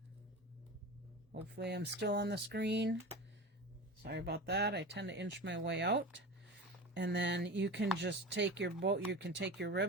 Hopefully I'm still on the screen. Sorry about that, I tend to inch my way out. And then you can just take your bow, you can take your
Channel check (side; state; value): both; normal; correlation 0.30